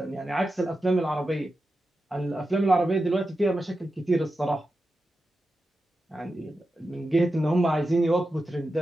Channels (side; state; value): both; normal; correlation 0.91